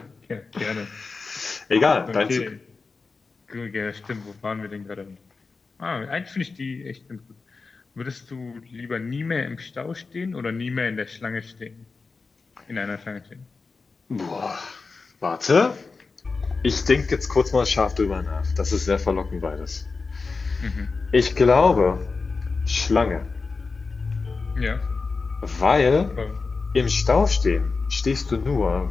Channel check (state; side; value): quieter; right; 4.3 dB